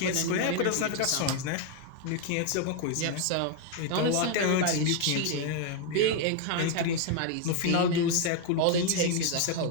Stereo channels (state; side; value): different; both; correlation 0.01